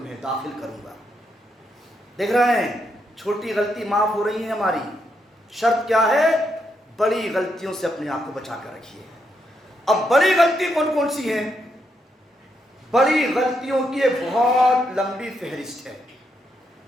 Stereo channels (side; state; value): both; normal; correlation 0.79